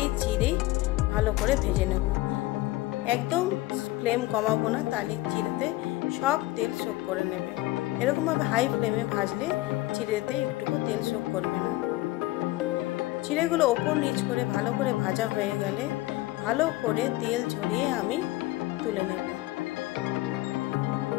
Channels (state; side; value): quieter; right; 18.3 dB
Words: চিড়েই ভালো করে ভেজে নেব। একদম ফ্লেম কমাবো না, তাহলে চিড়েতে সব তেল শোক করে নেবে। এরকমভাবে হাই ফ্লেমে ভাজলে চিড়েতে একটুকু তেল শোক করবে না। চিড়েগুলো ওপর নিচ করে ভালো করে ভাজা হয়ে গেলে ভালো করে তেল ঝরিয়ে আমি তুলে নেব।